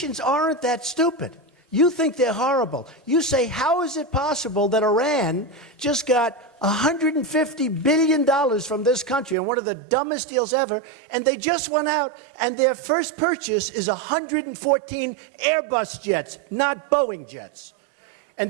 aren't that stupid. You think they're horrible. You say, how is it possible that Iran just got $150 billion from this country on one of the dumbest deals ever, and they just went out and their first purchase is 114 Airbus jets, not Boeing jets. And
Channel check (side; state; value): left; drops out; at 9.3 s